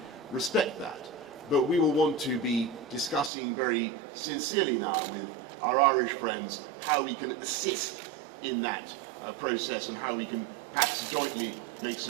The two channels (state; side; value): drops out; left; at 3.3 s